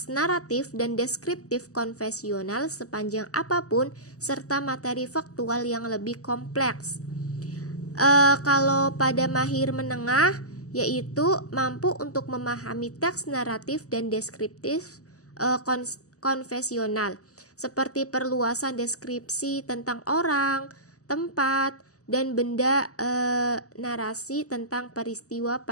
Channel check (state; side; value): late; right; 0.66 ms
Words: naratif dan deskriptif konvensional sepanjang apapun serta materi faktual yang lebih kompleks. Kalau pada mahir menengah yaitu mampu untuk memahami teks naratif dan deskriptif konvensional seperti perluasan deskripsi tentang orang, tempat, dan benda, narasi tentang peristiwa